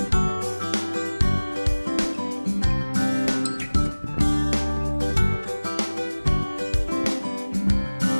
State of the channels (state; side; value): inverted; both; correlation -1.00